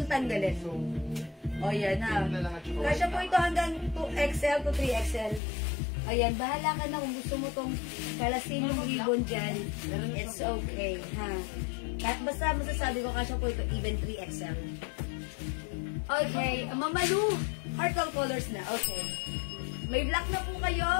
tanggalin. O yan ha. Kasya po ito hanggang 2XL to 3XL. Ayan, bahala ka na kung gusto mo itong kalasin yung ribbon dyan. It's okay, ha. Kahit basta masasabi ko, kasya po ito even 3XL. Okay, Mamalu, heart all colors na. Okay. May black na po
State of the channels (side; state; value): right; drops out; at 5.4 s